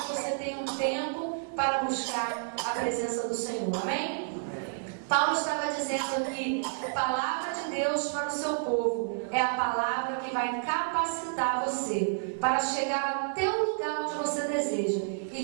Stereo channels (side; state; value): left; silent; 58 dB below the other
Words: você tenha um tempo para buscar a presença do Senhor. Amém? Paulo estava dizendo que a palavra de Deus para o seu povo é a palavra que vai capacitar você para chegar até o lugar onde você deseja e